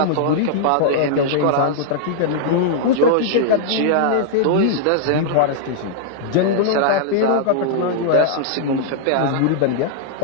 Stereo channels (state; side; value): different; both; correlation -0.01